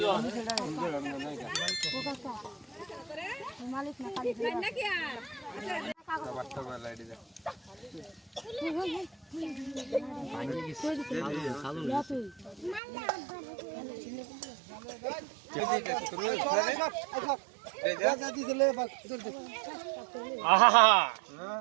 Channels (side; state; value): left; drops out; at 12.8 s